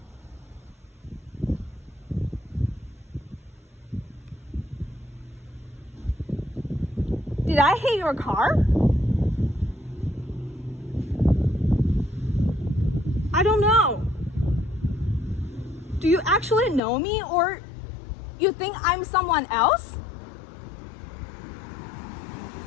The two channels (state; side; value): drops out; right; at 16.8 s